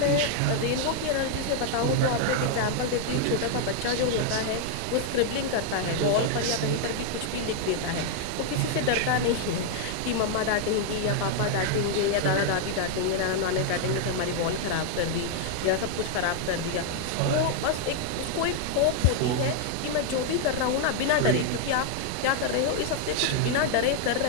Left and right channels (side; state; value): both; different; correlation 0.00